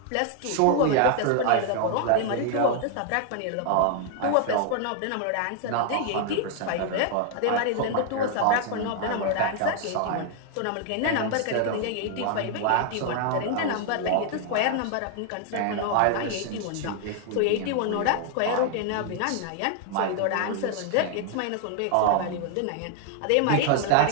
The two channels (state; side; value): different; both; correlation 0.00